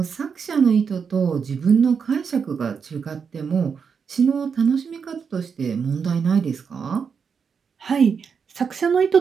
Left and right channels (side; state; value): left; quieter; 6.2 dB